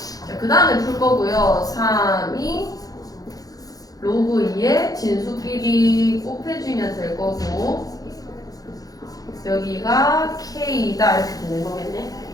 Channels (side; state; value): right; late; 0.18 ms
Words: 자, 그 다음에 풀 거고요. 3이 로그 2의 진수끼리 곱해주면 될 거고 여기가 k다 이렇게 되는 거겠네.